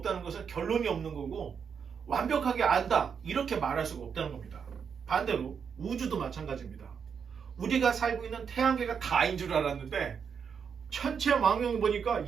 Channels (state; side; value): quieter; left; 6.7 dB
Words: 것은 결론이 없는 거고 완벽하게 안다 이렇게 말할 수가 없다는 겁니다. 반대로 우주도 마찬가지입니다. 우리가 살고 있는 태양계가 다인 줄 알았는데 천체 망령을 보니까